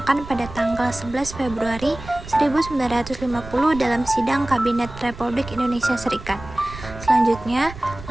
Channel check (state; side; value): noise; right; rumble, 14 dB below the sound